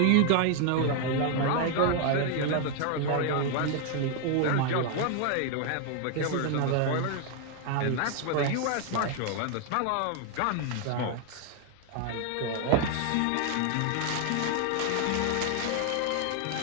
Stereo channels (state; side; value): different; both; correlation 0.00